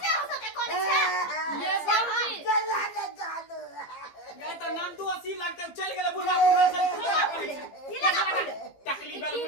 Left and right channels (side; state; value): right; late; 15 ms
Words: हो सके कोन छ ये बाबूजी गला न जानो गए त नाम तो 80 लगते चल गेले बुढ़ा से टकली बेल